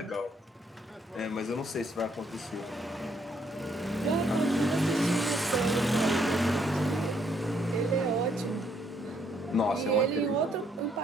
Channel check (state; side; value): normal; both; correlation 0.70